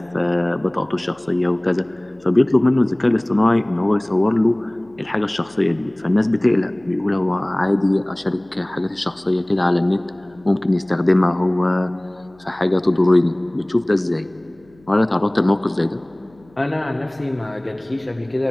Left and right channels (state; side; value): noise; left; hum, 30 dB below the sound